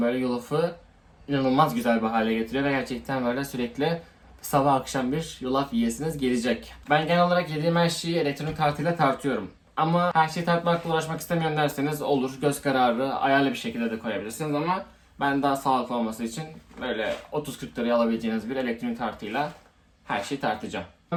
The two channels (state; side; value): identical; both; correlation 1.00